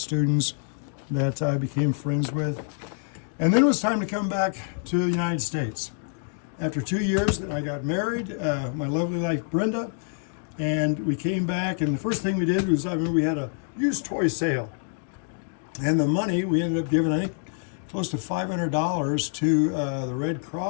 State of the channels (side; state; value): right; silent; 61 dB below the other